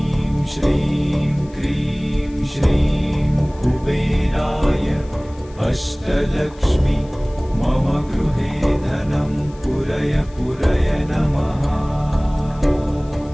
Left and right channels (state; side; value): noise; left; hiss, 27 dB below the sound